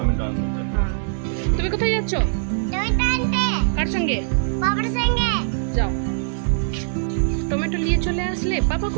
আনতে। হ্যাঁ, তুমি কোথায় যাচ্ছ? কার সঙ্গে? বাবার সঙ্গে যাও, টমেটো নিয়ে চলে আসলে। পাপা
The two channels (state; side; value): silent; left; 58 dB below the other